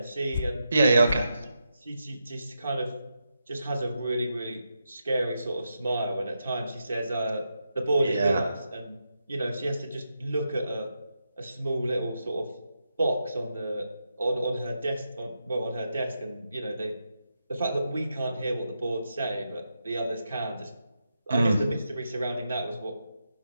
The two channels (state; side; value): inverted; both; correlation -0.86